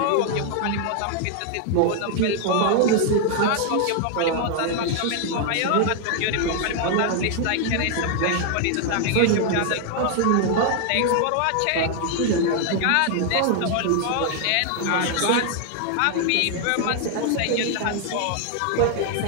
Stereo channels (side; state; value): both; different; correlation 0.00